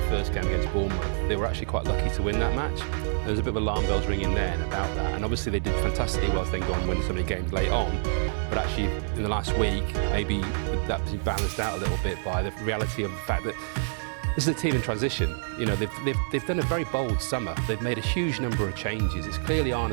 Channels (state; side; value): silent; left; 58 dB below the other